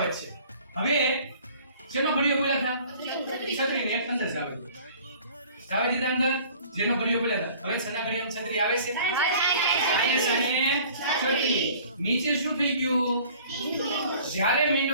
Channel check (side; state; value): both; inverted; correlation -0.50